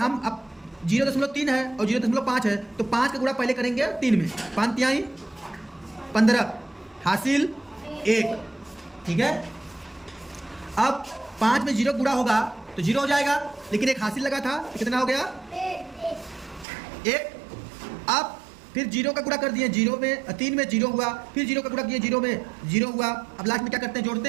अब 0.3 है और 0.5 है तो 5 का गुणा पहले करेंगे 3 में। 5 तिहाई 15 हासिल 1। ठीक है, अब 5 में 0 गुणा होगा तो 0 हो जाएगा, लेकिन एक हासिल लगा था तो कितना हो गया 1। अब फिर 0 का गुणा कर दिए, 0 में 3 में 0 हुआ, फिर 0 का गुणा किए 0 में 0 हुआ। अब लास्ट में क्या करते हैं, जोड़ते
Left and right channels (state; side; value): drops out; left; at 16.7 s